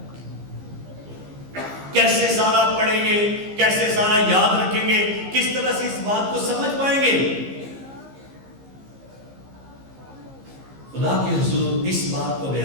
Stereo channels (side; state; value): left; late; 15 ms